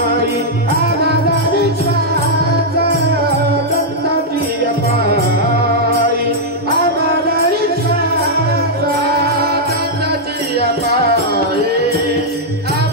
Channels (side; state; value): both; normal; correlation -0.05